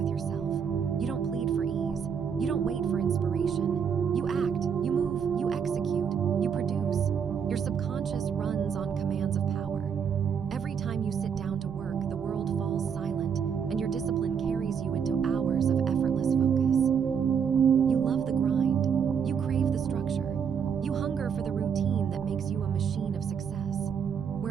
yourself. You don't plead for ease. You don't wait for inspiration. You act, you move, you execute, you produce. Your subconscious runs on commands of power. Every time you sit down to work, the world falls silent, and your discipline carries you into hours of effortless focus. You love the grind. You crave the structure. You hunger for the routine that makes you a machine of success.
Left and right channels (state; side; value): quieter; left; 7.1 dB